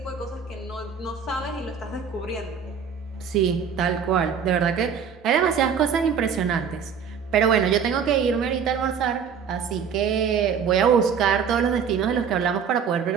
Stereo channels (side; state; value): left; quieter; 6.9 dB